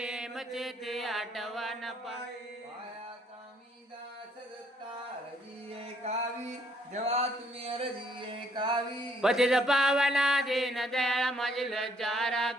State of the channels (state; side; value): normal; both; correlation 0.67